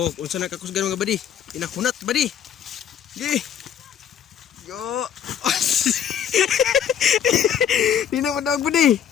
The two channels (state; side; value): quieter; right; 9.1 dB